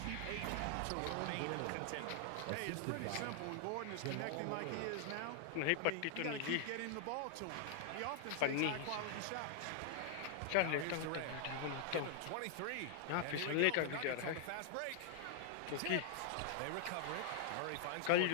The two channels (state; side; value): different; both; correlation -0.01